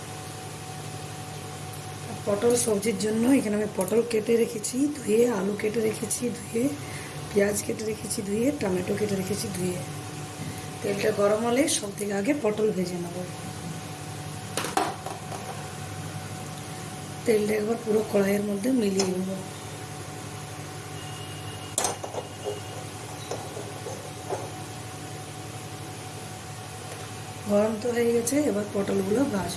পটল সবজির জন্য এখানে আমি পটল কেটে রেখেছি ধুয়ে, আলু কেটে রেখেছি ধুয়ে, পেঁয়াজ কেটে রেখেছি ধুয়ে, টমেটো কেটে রেখেছি ধুয়ে। তেলটা গরম হলে সব থেকে আগে পটল ভেজে নেব। তেলটা একবার পুরো কড়াইয়ের মধ্যে মিলিয়ে নেব। গরম তো হয়ে গেছে, এবার পটলগুলো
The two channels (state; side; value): identical; both; correlation 1.00